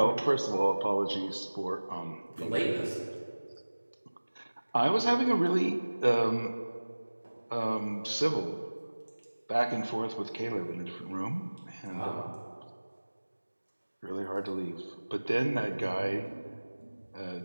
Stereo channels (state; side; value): inverted; both; correlation -1.00